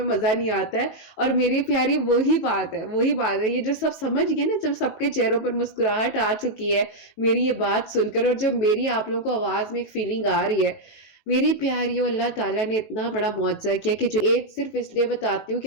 مزہ نہیں آتا ہے۔ اور میری پیاری وہی بات ہے، یہ جو سب سمجھ گئے نا، جب سب کے چہروں پر مسکراہٹ آ چکی ہے میری یہ بات سن کر، اور جو میری آپ لوگوں کو آواز میں ایک فیلنگ آ رہی ہے، میری پیاریوں، اللہ تعالیٰ نے اتنا بڑا معجزہ کیا کہ جو ایج صرف اس لیے بتاتی ہوں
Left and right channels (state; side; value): late; right; 19 ms